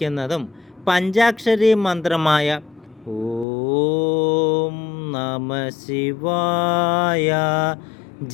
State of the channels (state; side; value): drops out; right; at 3.5 s